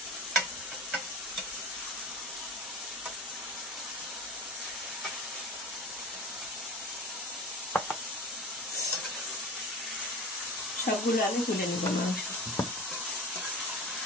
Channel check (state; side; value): normal; both; correlation 0.34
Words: সবগুলো আমি তুলে নেব মাংস।